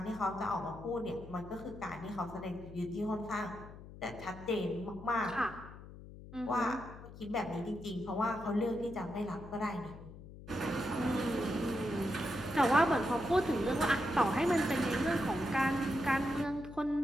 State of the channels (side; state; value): left; noise; hum, 15 dB below the sound